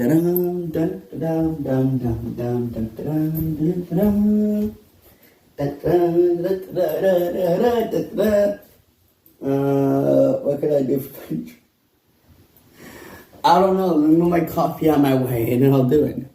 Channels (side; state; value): both; identical; correlation 1.00